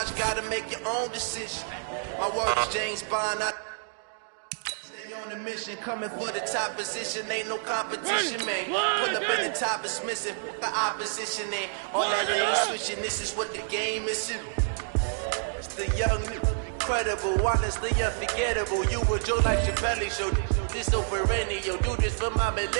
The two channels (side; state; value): left; silent; digital silence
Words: gotta make your own decision. My word is James Bond, I stay on the mission, coming for the top position, ain't no competition, man. Pull up in the top is missing, the opposition ain't. All that lane switching, this is what the game is. It's the young, incredible, honestly unforgettable. You would Joe like Chappelle show. This over radio, do this for my